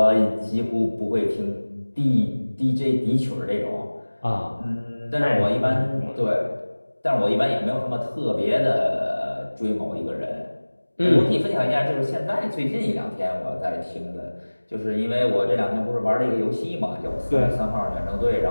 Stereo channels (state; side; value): inverted; both; correlation -1.00